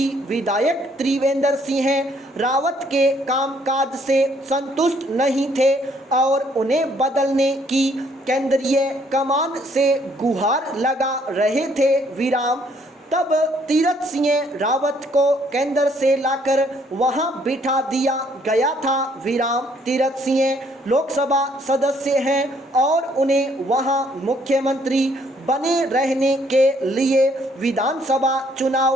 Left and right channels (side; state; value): both; normal; correlation 0.66